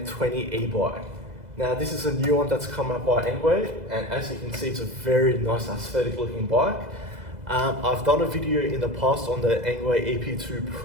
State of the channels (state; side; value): late; left; 2.0 ms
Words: e-bike. Now this is a new one that's come out by Engwe, and as you can see it's a very nice aesthetic looking bike. I've done a video in the past on the Engwe EP2